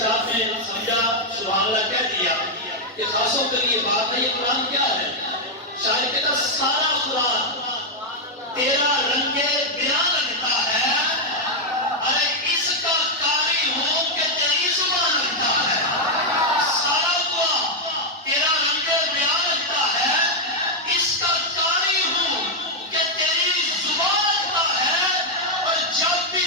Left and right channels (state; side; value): normal; both; correlation -0.01